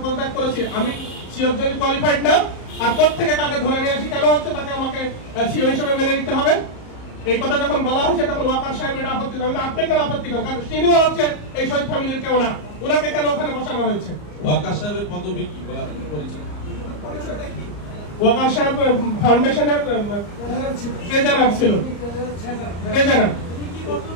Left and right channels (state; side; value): late; right; 34 ms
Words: পদত্যাগ করেছি, আমি সিওর জন্য কোয়ালিফাইড না? আর কোত্থেকে কাকে ধরে নিয়ে আসি, কেন হচ্ছে তাকে আমাকে সিও হিসেবে মেনে নিতে হবে? এই কথা যখন বলা হয়েছে তখন ওয়াকার সাহেব এটা আপত্তি করেন। আপনি কেন আপত্তি করেন? কারণ তিনিও হচ্ছে এই শহীদ ফ্যামিলির কেউ না, ওনাকে কেন ওখানে বসানো হয়েছে? ওয়াকার সাহেবের পদবি কি বা পরিচয়টা কি? ওয়াকার সাহেব ফাউন্ডেশনের ট্রেজারার ছিল। ট্রেজারার,